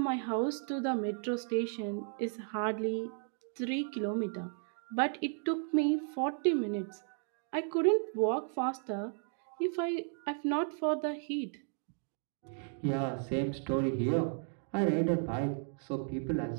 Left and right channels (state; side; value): silent; left; 55 dB below the other